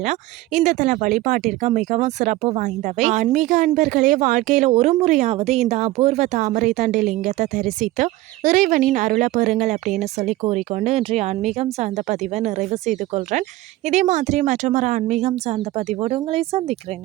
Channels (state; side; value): quieter; left; 17.5 dB